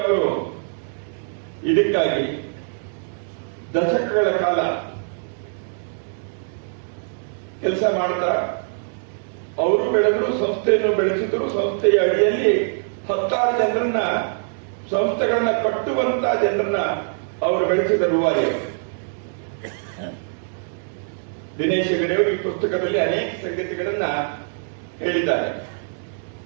ಅವರು ಇದಕ್ಕಾಗಿ ದಶಕಗಳ ಕಾಲ ಕೆಲಸ ಮಾಡ್ತಾ ಅವರು ಬೆಳೆದ್ರು, ಸಂಸ್ಥೆಯನ್ನು ಬೆಳೆಸಿದ್ರು. ಸಂಸ್ಥೆಯ ಅಡಿಯಲ್ಲಿ 10 ಜನರನ್ನ, ಸಂಸ್ಥೆಗಳನ್ನ ಕಟ್ಟುವಂತ ಜನರನ್ನ ಅವರು ಬೆಳೆಸಿದ ರೂವಾರಿ. ದಿನೇಶ್ ಹೆಗಡೆಯವರು ಈ ಪುಸ್ತಕದಲ್ಲಿ ಅನೇಕ ಸಂಗತಿಗಳನ್ನ ಹೇಳಿದ್ದಾರೆ.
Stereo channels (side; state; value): left; silent; digital silence